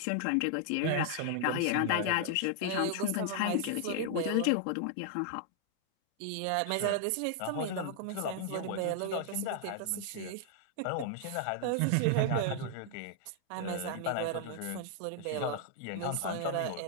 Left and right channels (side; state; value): both; different; correlation 0.00